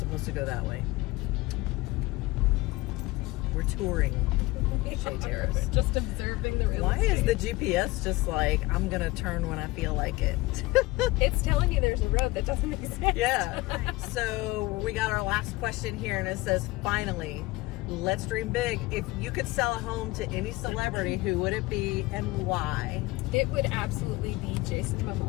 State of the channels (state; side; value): quieter; right; 20.7 dB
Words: to go that way. We're touring Shea Terrace. Just observing the real Why estate. is the GPS just like, I'm going to turn when I feel like it? It's telling you there's a road that doesn't exist. Yeah. So we got our last question here, and it says, finally, let's dream big. If you could sell a home to any celebrity, who would it be and why? It would absolutely be Jason